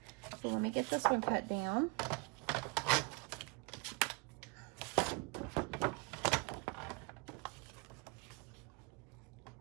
So let me get this one cut down.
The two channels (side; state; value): left; quieter; 30.7 dB